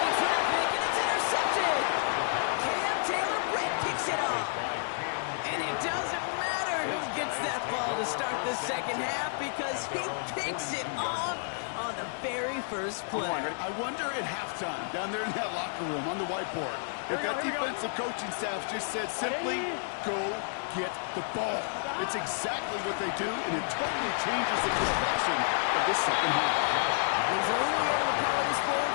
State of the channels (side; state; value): right; silent; digital silence